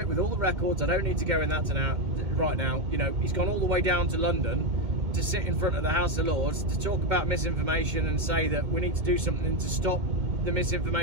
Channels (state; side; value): late; left; 2.4 ms